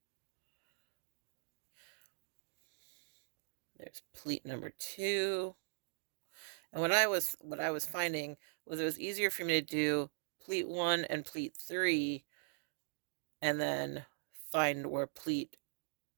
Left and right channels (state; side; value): silent; left; digital silence